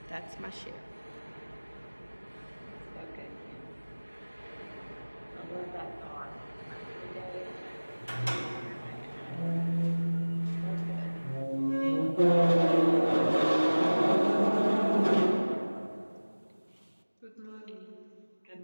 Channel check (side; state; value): both; inverted; correlation -1.00